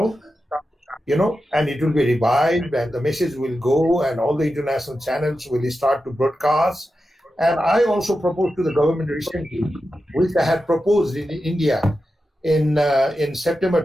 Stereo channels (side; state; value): both; normal; correlation 0.90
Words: and it will be revived and the message will go and all the international channels will start to broadcast. And I also proposed to the government recently, which I had proposed in India in September